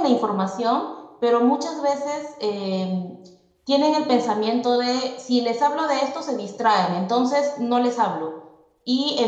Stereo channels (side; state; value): both; identical; correlation 1.00